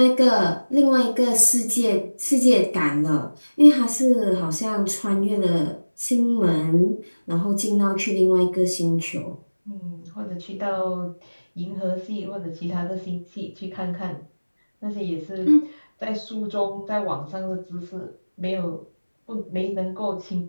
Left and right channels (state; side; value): inverted; both; correlation -1.00